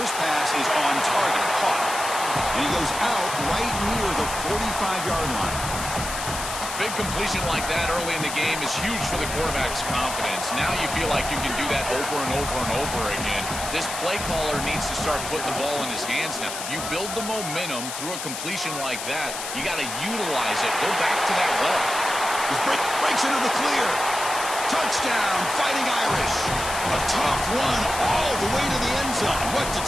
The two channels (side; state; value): left; noise; hiss, 6 dB below the sound